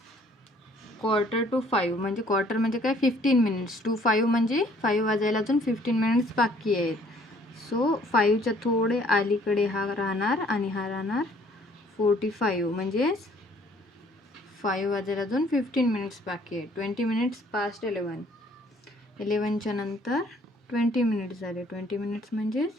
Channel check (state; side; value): normal; both; correlation 0.60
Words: क्वार्टर टू 5 म्हणजे क्वार्टर म्हणजे काय 15 मिनिट्स. 2 5 म्हणजे 5 वाजायला अजून 15 मिनिट्स बाकी आहेत. सो 5च्या थोडे अलीकडे हा राहणार आणि हा राहणार 45. म्हणजेच 5 वाजेल, अजून 15 मिनिट्स बाकी आहे. 20 मिनिट्स पास्ट 11. 11च्या नंतर 20 मिनिट्स झाले. 20 मिनिट्स म्हणजेच